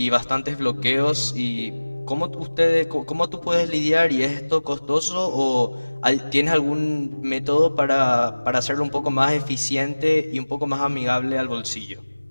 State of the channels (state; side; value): inverted; both; correlation -1.00